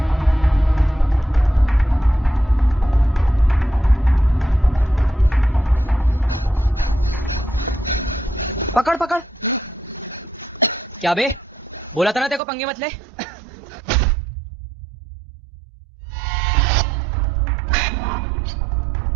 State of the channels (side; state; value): left; drops out; at 12.4 s